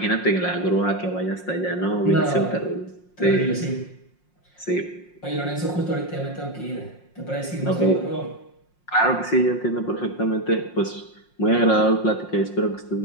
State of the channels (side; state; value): right; late; 5.6 ms